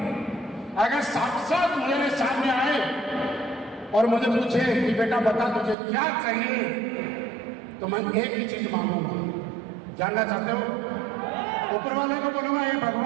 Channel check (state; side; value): drops out; left; at 5.8 s